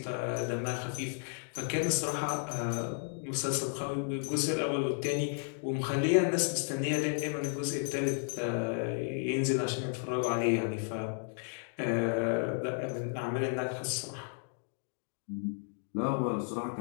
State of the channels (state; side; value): silent; right; 56 dB below the other